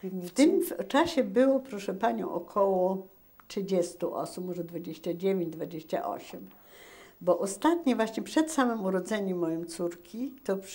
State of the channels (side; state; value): both; identical; correlation 1.00